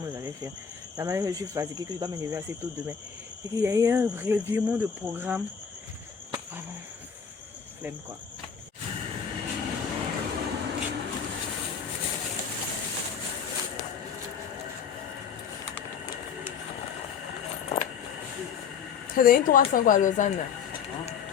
je vais faire. La manière que je suis fatiguée, que je dois me lever assez tôt demain. Et qu'il y a eu un revirement de programme. Vraiment, flemme quoi. C'est donné 300 quoi à Lausanne.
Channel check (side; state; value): right; quieter; 7.0 dB